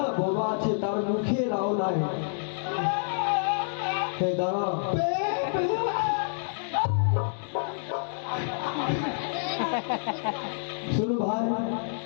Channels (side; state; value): right; silent; digital silence